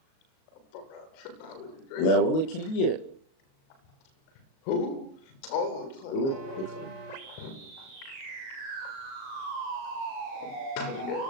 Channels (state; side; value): late; right; 37 ms